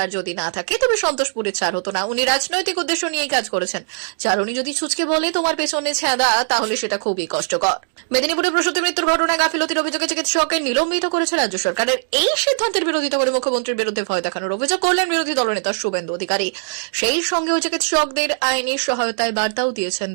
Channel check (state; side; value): silent; left; digital silence